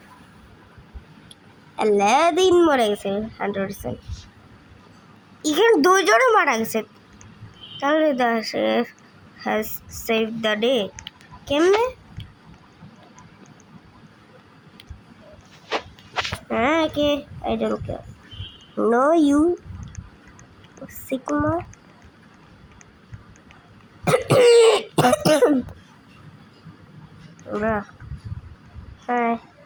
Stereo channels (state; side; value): identical; both; correlation 1.00